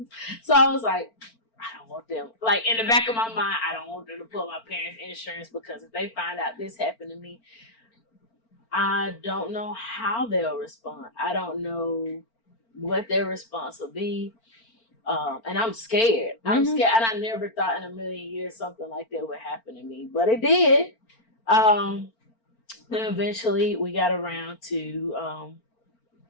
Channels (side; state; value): right; late; 4.4 ms